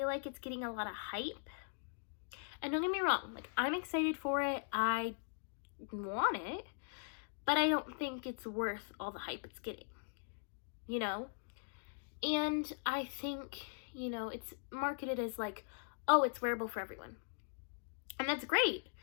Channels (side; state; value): right; silent; digital silence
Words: like it's getting a lot of hype. And don't get me wrong, I'm excited for it. I want it, but I don't think it's worth all the hype it's getting, And I think, it's marketed as oh, it's wearable for everyone. And that's great.